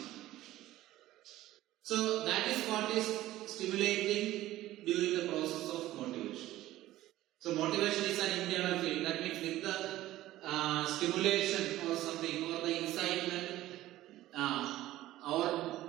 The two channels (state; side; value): quieter; left; 15.4 dB